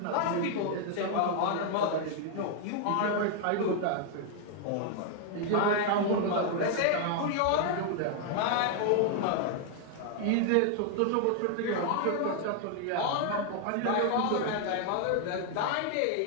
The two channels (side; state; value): both; different; correlation 0.00